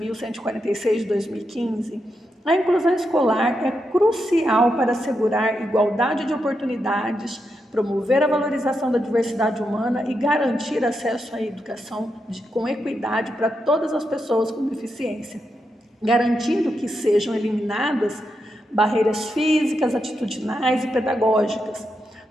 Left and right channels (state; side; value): normal; both; correlation 0.85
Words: de 2015, a inclusão escolar é crucial para assegurar igualdade de oportunidades, promover a valorização da diversidade humana e garantir acesso à educação com equidade para todas as pessoas com deficiência, garantindo que sejam eliminadas barreiras físicas, atitudinais e pedagógicas,